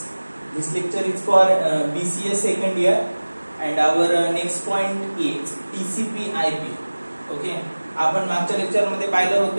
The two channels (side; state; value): both; inverted; correlation -1.00